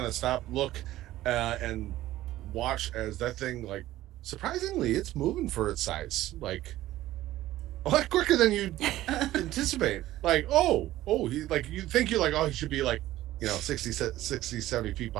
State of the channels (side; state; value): left; quieter; 15.1 dB